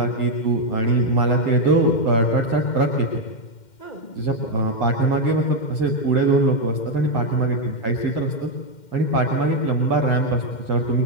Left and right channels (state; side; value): late; right; 2.1 ms